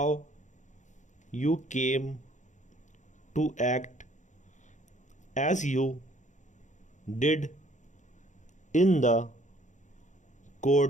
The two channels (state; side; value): late; right; 0.35 ms